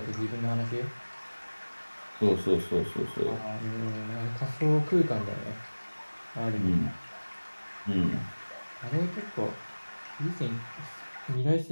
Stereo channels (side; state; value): both; inverted; correlation -1.00